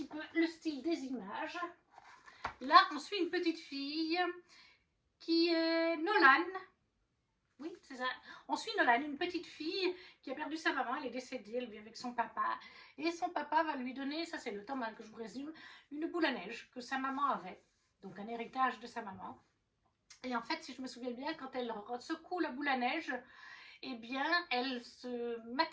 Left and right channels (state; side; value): identical; both; correlation 1.00